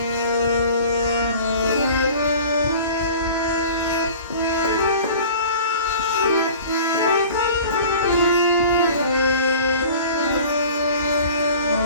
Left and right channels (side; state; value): both; inverted; correlation -0.43